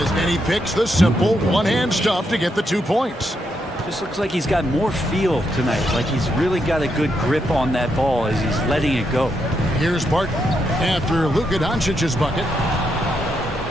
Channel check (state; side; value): normal; both; correlation 0.80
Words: and he picks the simple one-hand stuff to get the 2 points. Just looks like he's got more feel tonight, like he's really got a good grip on that ball as he's letting it go. Here's Barton after Luka Doncic's bucket.